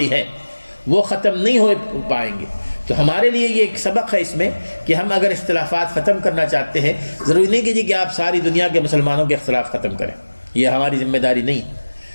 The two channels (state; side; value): inverted; both; correlation -1.00